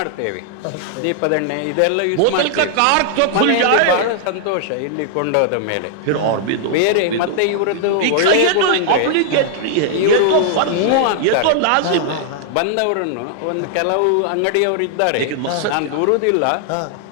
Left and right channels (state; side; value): different; both; correlation -0.01